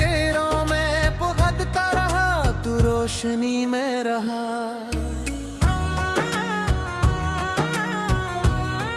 में पुकारता रहा, तू रोशनी में रहा।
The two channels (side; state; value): both; identical; correlation 1.00